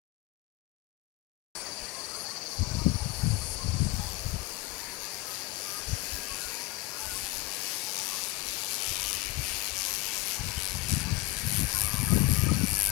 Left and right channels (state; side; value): quieter; right; 19.3 dB